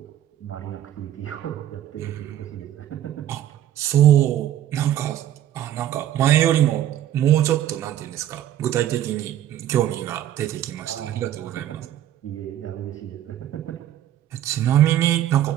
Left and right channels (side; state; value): left; quieter; 11.8 dB